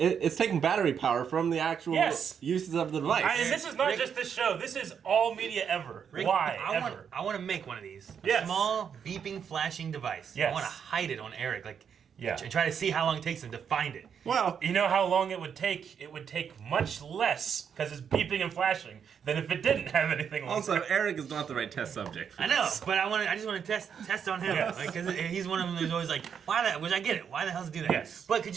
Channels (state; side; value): quieter; left; 7.5 dB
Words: taking battery power from the actual Yes. uses of the device. And this is not Rick- just this show. This is all media ever. Rick, Why I ever? want to make one of these. A Yes. small beeping flashing device. Yes. I want to hide it on Eric, like, Yeah. and try to see how long it takes him to find it. Well, You know how long it would take? It would take much less because it's beeping and flashing than if it didn't have anything on also, it. Eric is not the right test subject. For I know, this. but I just want to test on him, Yes. like, because he's one of them who's always like, which I get it. Why the hell does he do that? Yes. But could